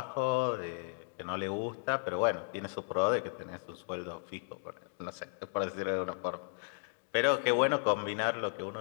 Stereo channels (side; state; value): right; silent; digital silence